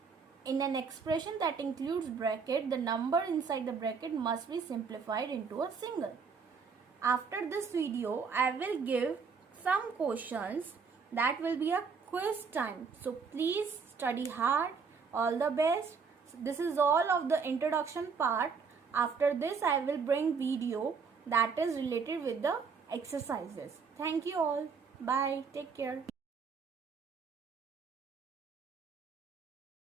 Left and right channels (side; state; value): left; quieter; 5.5 dB